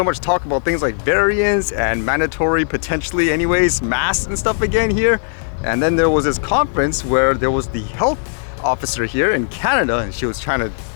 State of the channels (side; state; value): right; silent; 67 dB below the other